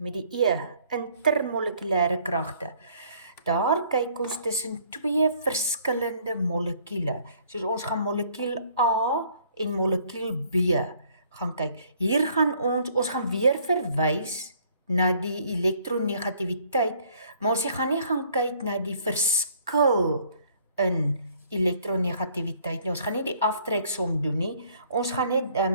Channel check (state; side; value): inverted; both; correlation -0.60